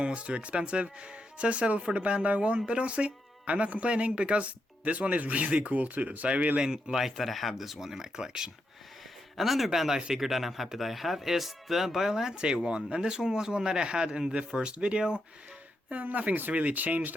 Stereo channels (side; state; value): both; normal; correlation 0.83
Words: was too expensive, so I settled for the Bandai one. But honestly, I'm not complaining, because this one is really cool too, so I really like that I have this one in my collection. Another Bandai figure that I'm happy that I have is the Biolante one, and this one was one that I had in the first video. Nothing's really